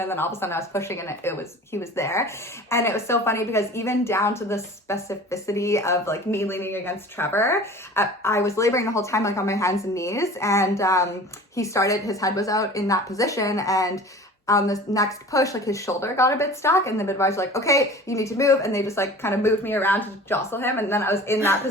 then all of a sudden I was pushing, and he was there. And it was so funny because even down to the specificity of like me leaning against Trevor, I was laboring the whole time like on my hands and knees, and his head was out in that position, and on the next push, like his shoulder got a bit stuck, and the midwives were like, okay, you need to move. And they just like kind of moved me around to jostle him. And then I was in that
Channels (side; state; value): both; normal; correlation 0.41